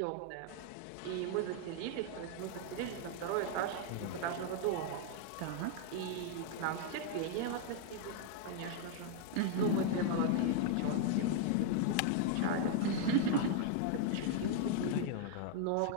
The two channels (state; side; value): different; both; correlation 0.00